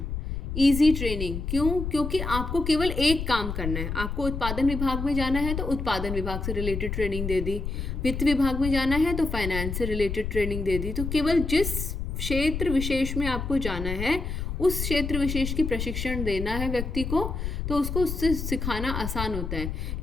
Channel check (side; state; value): left; noise; rumble, 4 dB below the sound